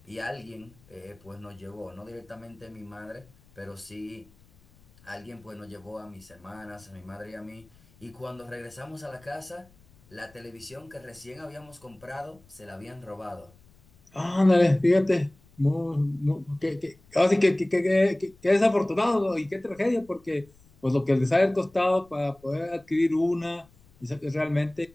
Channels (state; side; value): noise; left; rumble, 28 dB below the sound